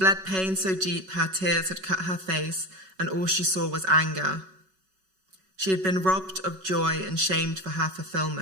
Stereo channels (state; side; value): late; left; 5.3 ms